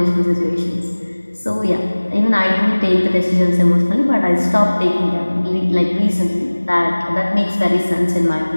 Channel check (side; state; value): both; inverted; correlation -1.00